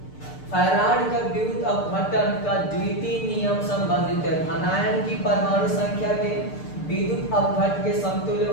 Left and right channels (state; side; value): late; right; 6.7 ms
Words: फैराड का विद्युत अपघटन का द्वितीय नियम संबंधित है। धनायन की परमाणु संख्या के विद्युत अपघट के समतुल्य